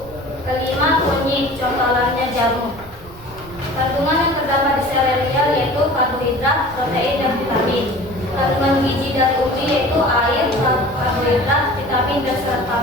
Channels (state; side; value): noise; right; rumble, 21 dB below the sound